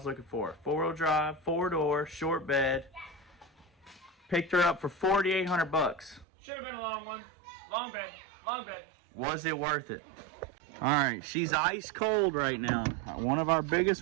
looking for. 4-wheel drive, 4-door, short bed. Picked her up for 4,800 bucks. Should have been a long one. Long bed. Long bed. Was it worth it? Alright, she's ice cold right now. One of our biggest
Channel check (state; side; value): drops out; left; at 6.2 s